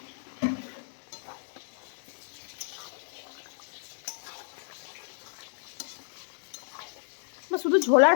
শুধু ঝোল আর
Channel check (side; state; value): right; silent; digital silence